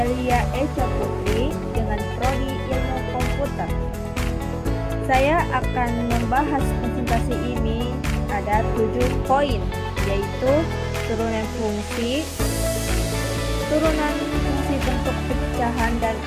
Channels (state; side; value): identical; both; correlation 1.00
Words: Echa Putri dengan Prodi Ilmu Komputer. Saya akan membahas presentasi ini ada 7 poin, yaitu turunan fungsi bentuk pecahan dan